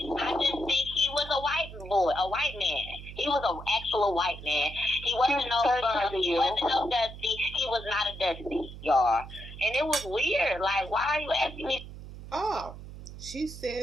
I just think he was a white man. He was an actual white man. He wasn't no dusty. He was not a dusty, y'all. And it was weird. Like, why are you asking me? Oh, she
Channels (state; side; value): noise; right; hum, 13 dB below the sound